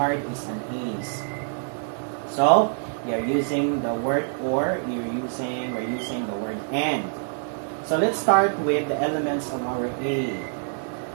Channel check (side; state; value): left; silent; digital silence